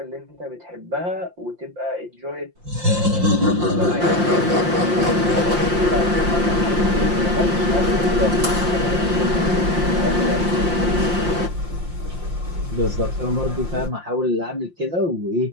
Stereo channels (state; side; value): late; left; 5.7 ms